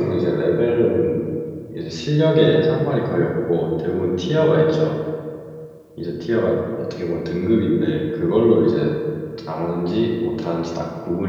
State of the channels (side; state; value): both; identical; correlation 1.00